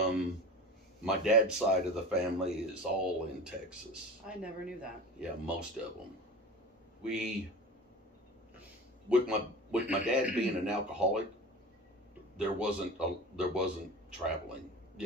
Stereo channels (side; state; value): both; normal; correlation 0.33